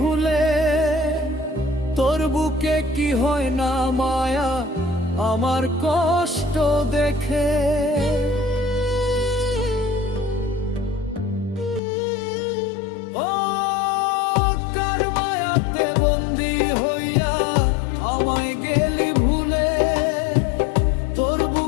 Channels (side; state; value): right; drops out; at 11.8 s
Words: তোর বুকে কি হয় না মায়া আমার কষ্ট দেখে। ও কার মায়াতে বন্দী হইয়া আমায় গেলি ভুলে, তোর